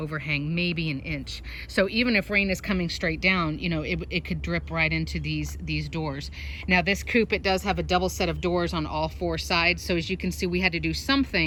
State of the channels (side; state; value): both; identical; correlation 1.00